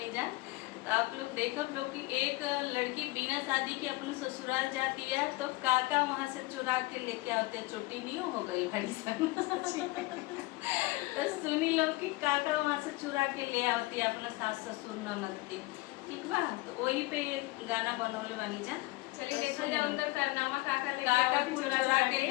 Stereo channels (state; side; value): quieter; right; 21.3 dB